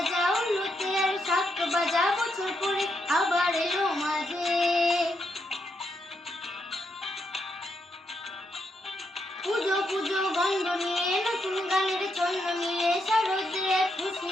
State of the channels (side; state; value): both; normal; correlation 0.80